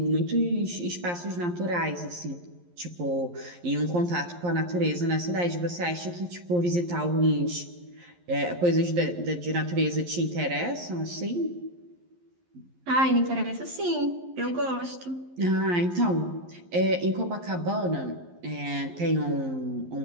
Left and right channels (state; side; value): late; left; 11 ms